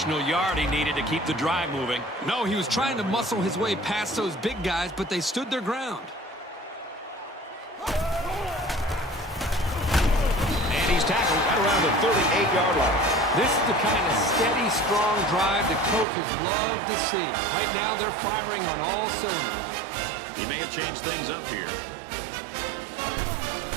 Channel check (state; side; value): drops out; left; at 16.1 s